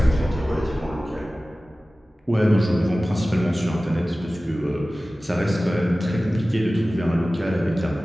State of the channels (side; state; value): both; normal; correlation 0.97